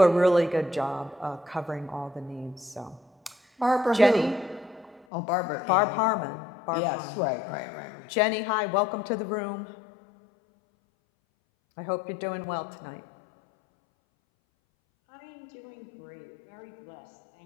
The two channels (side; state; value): right; drops out; at 5.1 s